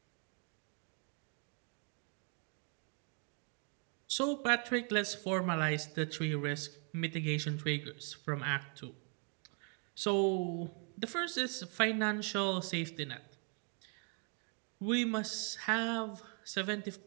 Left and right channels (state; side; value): quieter; left; 39.8 dB